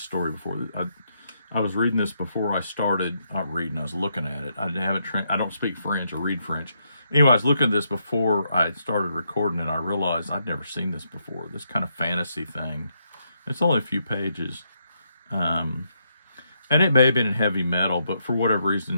story before. I was reading this before I started, not reading, I was looking at it. I don't speak French or read French. Anyway, I was looking at this before I started recording, and I realized I'd never seen this before, this kind of fantasy thing. It's only a few pages. And it may have been in heavy metal, but for whatever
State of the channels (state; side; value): inverted; both; correlation -0.78